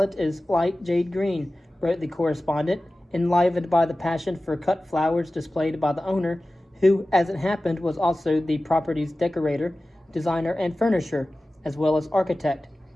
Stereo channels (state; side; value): normal; both; correlation 0.96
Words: is light jade green, wrote the correspondent, enlivened by the passion for cut flowers displayed by the owner, who, as it happened, was also the property's decorator, designer, and furnisher, as well as architect.